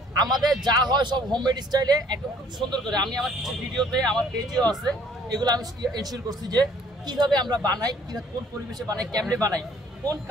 আমাদের যা হয় সব হোমমেড স্টাইলে একদম খুব সুন্দর করে, আমি আমার কিছু ভিডিওতে আমার পেজেও আছে, এগুলো আমি এনশিওর করছি যে কিভাবে আমরা বানাই, কিভাবে কোন পরিবেশে বানাই, কেমনে বানাই, কোন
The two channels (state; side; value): normal; both; correlation 0.59